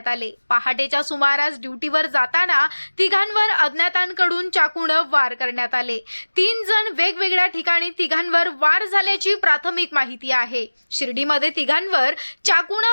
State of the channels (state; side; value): inverted; both; correlation -1.00